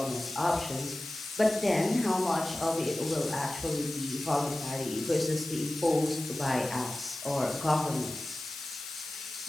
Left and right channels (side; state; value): left; noise; hiss, 10 dB below the sound